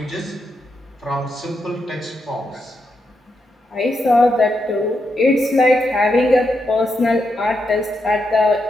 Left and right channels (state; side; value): normal; both; correlation 0.83